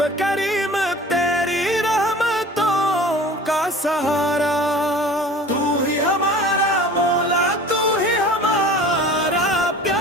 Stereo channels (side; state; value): both; normal; correlation 0.42